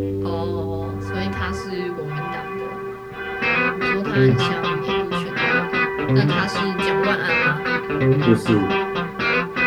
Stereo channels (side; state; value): both; identical; correlation 1.00